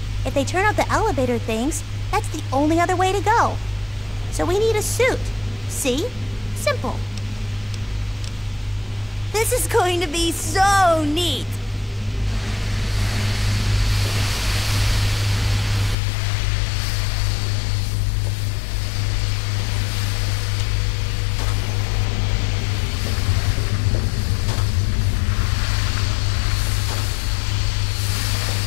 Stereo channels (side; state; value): right; drops out; at 16.0 s